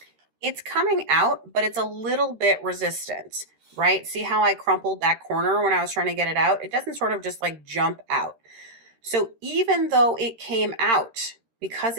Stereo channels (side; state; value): left; late; 13 ms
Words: It's coming out, but it's a little bit resistant, right? See how I crumpled that corner when I was trying to get it out? It doesn't sort of just like jump out. So even though it came out, because